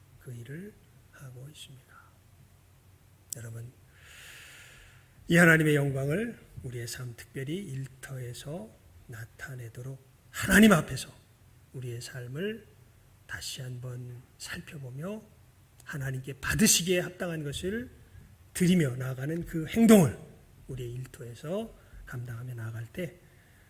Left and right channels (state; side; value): identical; both; correlation 1.00